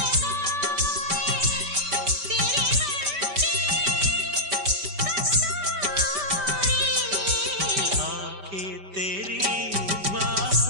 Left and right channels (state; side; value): late; left; 5.1 ms